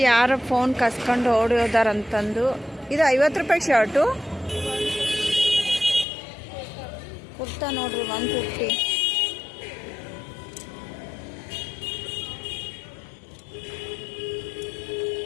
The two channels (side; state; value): right; drops out; at 6.1 s